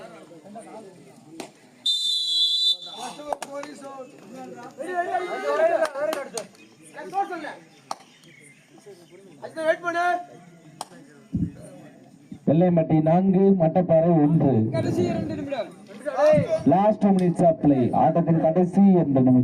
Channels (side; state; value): both; identical; correlation 1.00